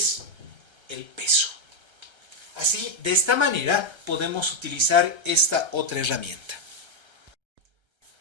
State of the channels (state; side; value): late; left; 1.3 ms